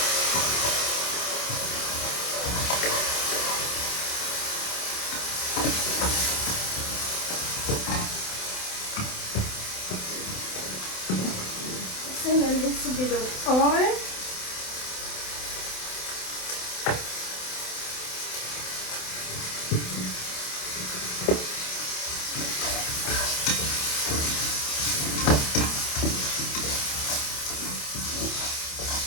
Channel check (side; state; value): right; late; 27 ms